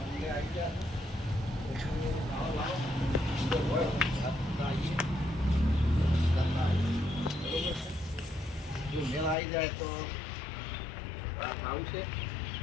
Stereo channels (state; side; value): drops out; right; at 9.3 s